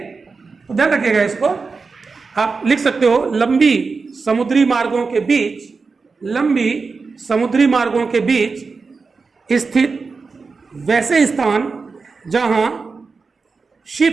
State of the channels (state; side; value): quieter; left; 4.5 dB